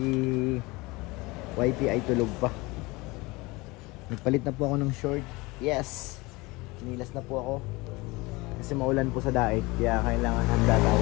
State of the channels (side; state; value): right; quieter; 23.4 dB